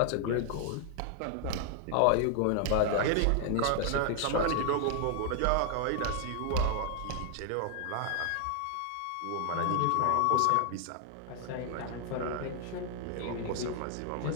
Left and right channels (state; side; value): different; both; correlation 0.00